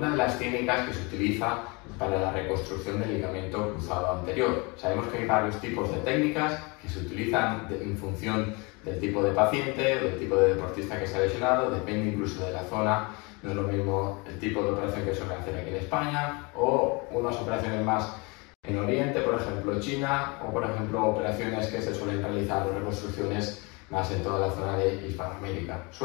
de las técnicas que se utiliza para la reconstrucción del ligamento cruzado anterior. Sabemos que hay varios tipos de técnicas que se utilizan en función del tipo de paciente o del tipo de deportista que se ha lesionado, depende incluso de la zona. No es lo mismo el tipo de operación que suelen hacer aquí en España o unas operaciones más en Oriente, por ejemplo China, o por ejemplo operaciones que se suelen realizar o reconstrucciones más en toda la zona de Hispanoamérica.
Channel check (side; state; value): right; quieter; 28.5 dB